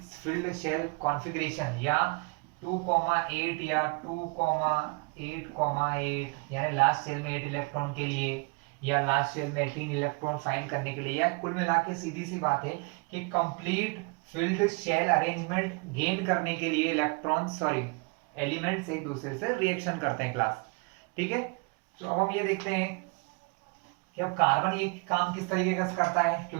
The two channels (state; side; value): quieter; left; 31.8 dB